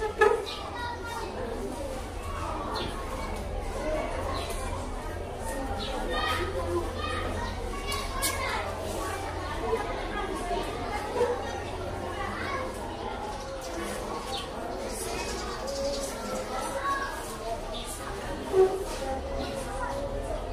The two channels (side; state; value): both; identical; correlation 1.00